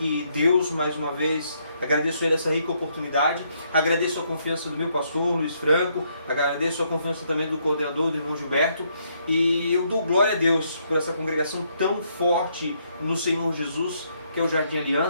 Deus mais uma vez, agradeço a Ele essa rica oportunidade, agradeço a confiança do meu pastor Luiz Franco, agradeço a confiança também do coordenador, do irmão Gilberto, e eu dou glória a Deus por essa congregação tão forte no Senhor Jesus, que é o Jardim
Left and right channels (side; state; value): both; inverted; correlation -0.73